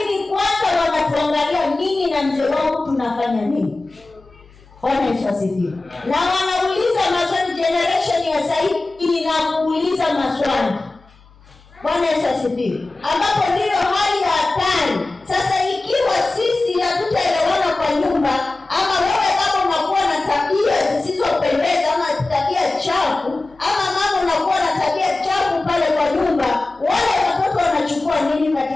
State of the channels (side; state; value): right; quieter; 3.1 dB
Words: kwanza wanatuangalia mimi na mzee wangu tunafanya nini. Bwana Yesu asifiwe. Na wanauliza maswali, generation ya sasa inakuuliza maswali. Bwana Yesu asifiwe. Ambapo ndio hali ya hatari. Sasa ikiwa sisi hatutaelewana kwa nyumba, ama wewe kama unakuwa na tabia zisizopendeza ama tabia chafu, ama mama unakuwa na tabia chafu pale kwa nyumba, wale watoto wanachukua nini